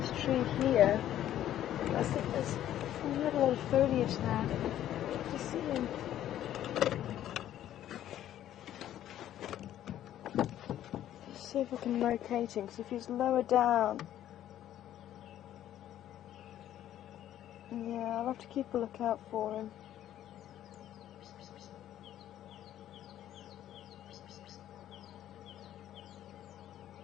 this tree here. I think there's a lot of foliage there. You can see him. Let's see if I can locate him, because if he's lower down, yeah, I'll have to keep a lookout for him.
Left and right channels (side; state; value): right; quieter; 11.9 dB